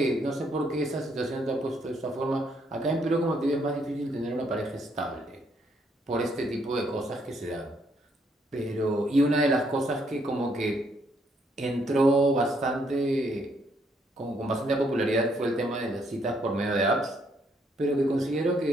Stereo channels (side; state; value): both; normal; correlation 0.71